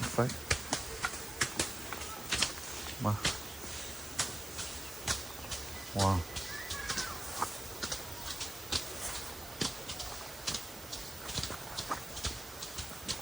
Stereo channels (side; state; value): right; noise; hiss, 15 dB below the sound